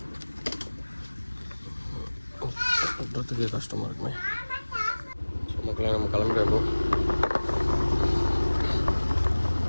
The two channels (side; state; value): both; inverted; correlation -1.00